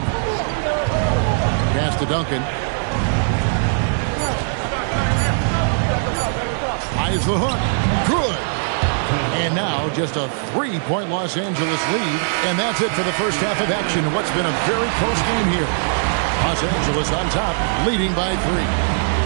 Pass to Duncan. Tries the hook. Good. And now just a 3-point Los Angeles lead. And that's it for the first half of action. What's been a very close game here. Los Angeles on top, leading by 3.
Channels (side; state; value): left; silent; 66 dB below the other